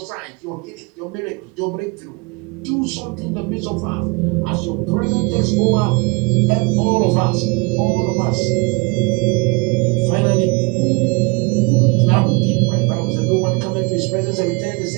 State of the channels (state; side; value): quieter; left; 28.5 dB